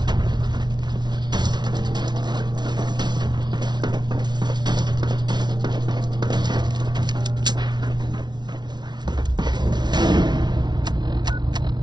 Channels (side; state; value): left; late; 0.20 ms